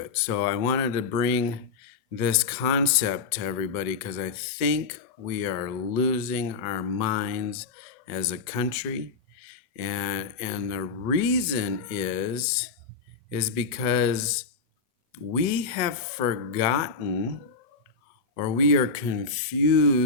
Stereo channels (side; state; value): right; quieter; 4.6 dB